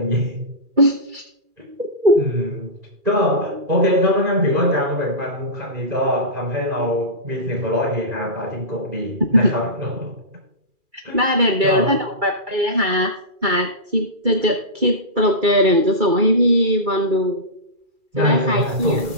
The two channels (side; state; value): left; late; 2.4 ms